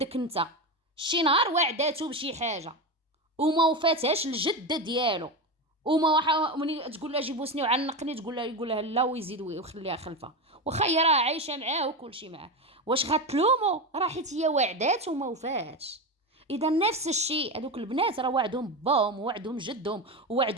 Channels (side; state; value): both; normal; correlation 0.18